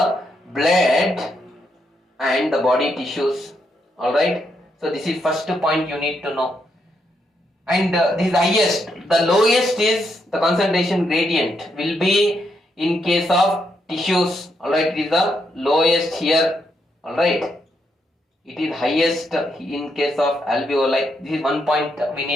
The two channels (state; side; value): normal; both; correlation 0.79